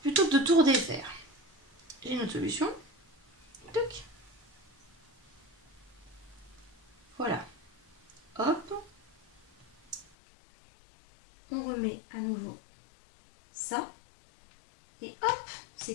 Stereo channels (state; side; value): drops out; right; at 10.1 s